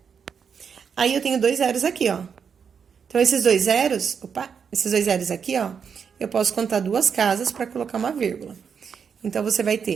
Aí, eu tenho 2 zeros aqui, ó. Então, esses 2 zeros, esses 2 zeros aqui, ó, eu posso contar 2 casas para colocar uma vírgula. Então, você vai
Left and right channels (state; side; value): quieter; left; 6.7 dB